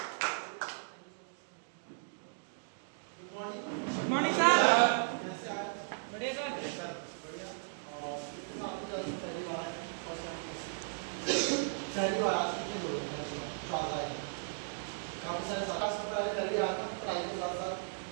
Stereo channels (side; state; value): left; silent; digital silence